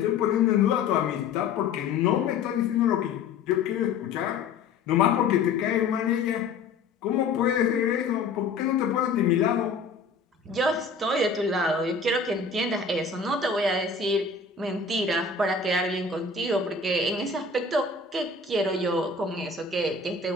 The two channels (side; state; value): right; quieter; 4.6 dB